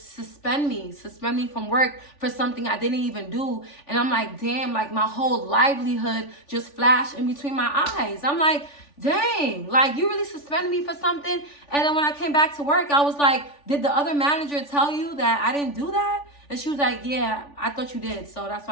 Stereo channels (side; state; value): right; late; 3.5 ms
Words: me from work for something I didn't even do. And I'm like, damn, like, my whole livelihood just flashed in between my eyes. I'm like, dang, like, you really suspended me for something? And then when I came back to work, I was like, did the other manager tell you that I didn't do that? And she was like, yeah, I thought you did, so that's